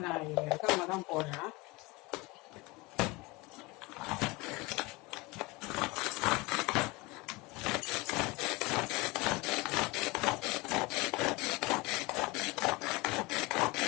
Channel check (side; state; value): right; quieter; 24.0 dB